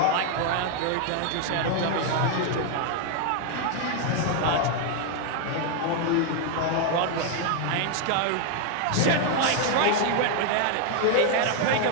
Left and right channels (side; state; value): both; different; correlation 0.00